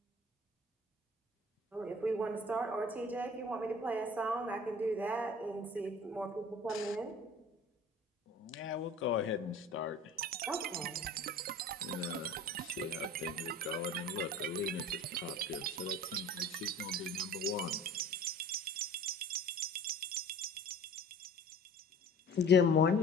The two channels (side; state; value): both; normal; correlation 0.43